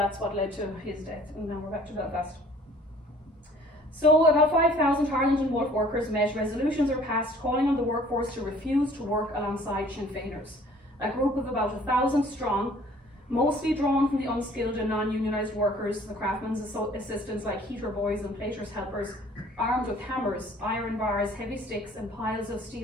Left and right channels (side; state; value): both; normal; correlation 0.54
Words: what led to his death. And now we're back to Belfast. So about 5,000 Harland and Wolff workers met. Resolutions are passed calling on the workforce to refuse to work alongside Sinn Féiners. A group of about 1,000 strong, mostly drawn from the unskilled and non-unionised workers, the craftsmen's assistants like heater boys and platers' helpers, armed with hammers, iron bars, heavy sticks and piles of